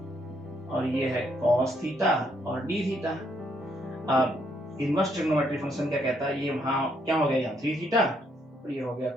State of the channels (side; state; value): both; normal; correlation 0.73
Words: और ये है cos थीटा और d थीटा। अब इनवर्स ट्रिग्नोमेट्री फंक्शन क्या कहता है, ये वहां क्या हो गया यहाँ 3 थीटा और ये हो गया